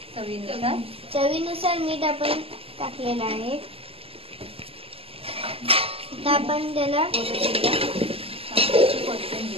चवीनुसार मीठ आपण टाकलेलं आहे। आता आपण त्याला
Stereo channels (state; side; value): late; left; 0.28 ms